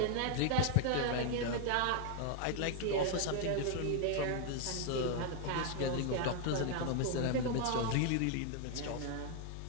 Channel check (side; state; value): both; different; correlation 0.00